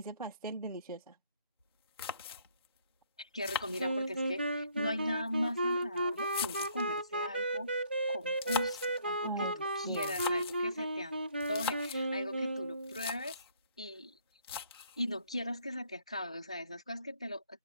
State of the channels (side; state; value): both; inverted; correlation -0.64